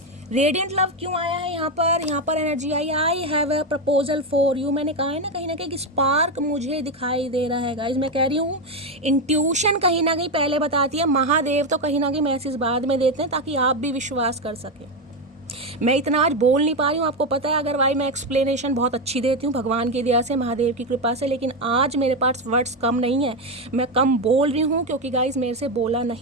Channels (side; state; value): both; normal; correlation 0.10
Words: radiant love क्यों आया है यहाँ पर? यहाँ पर energy I, I have a proposal for you. मैंने कहा है ना कहीं ना कहीं स्पार्क मुझे दिखाई दे रहा है गाइज। मैं कह रही हूँ इंट्यूशन कहीं ना कहीं पहले बताती है, महादेव तो कहीं ना कहीं मैसेज बाद में देते हैं ताकि आप भी विश्वास कर सकें। मैं इतना आज बोल नहीं पा रही हूँ, आपको पता है, अगर भाई मैं एक्सप्लेनेशन बहुत अच्छी देती हूँ भगवान की दया से, महादेव की कृपा से, लेकिन आज मेरे पास वर्ड्स कम नहीं है, मैं कम बोल रही हूँ क्योंकि गाइज मेरे से बोला